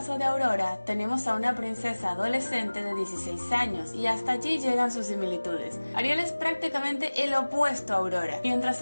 de Aurora, tenemos a una princesa adolescente de 16 años y hasta allí llegan sus similitudes. Ariel es prácticamente el opuesto a Aurora. Mientras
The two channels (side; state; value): both; inverted; correlation -1.00